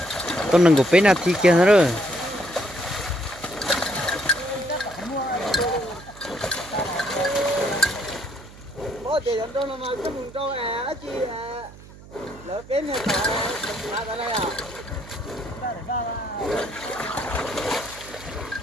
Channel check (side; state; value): right; noise; hum, 19 dB below the sound